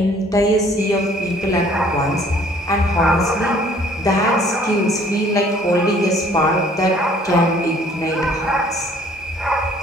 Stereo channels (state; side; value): normal; both; correlation 0.57